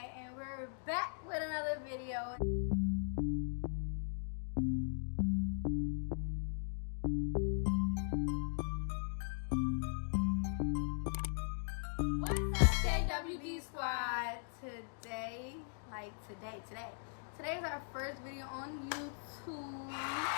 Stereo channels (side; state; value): right; silent; digital silence